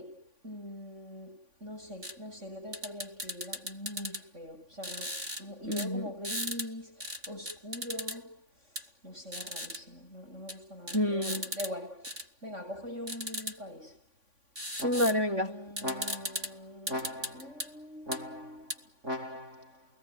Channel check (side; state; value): left; late; 3.5 ms